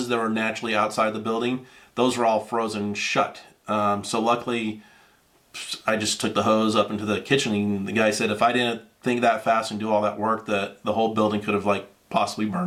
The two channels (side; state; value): both; identical; correlation 1.00